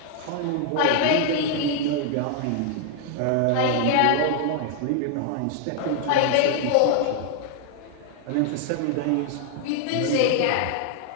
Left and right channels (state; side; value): different; both; correlation 0.00